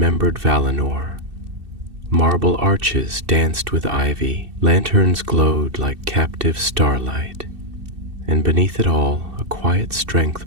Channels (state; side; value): late; left; 2.7 ms